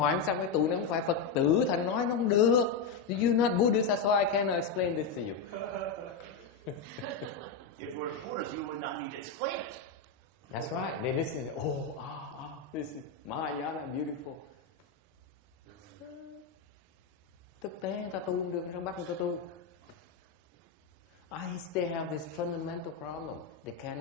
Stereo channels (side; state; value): right; quieter; 5.1 dB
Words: sao cái tụi nó không phải Phật tử, thành nói nó không được. You're not Buddhist, that's why I cannot explain this to you. If we're Buddhists, you would not need to explain it. That's right. They listen. this Mahayana beautiful. Thực tế người ta tu không được, trong bắt người ta tu. They have this fundamental problem. They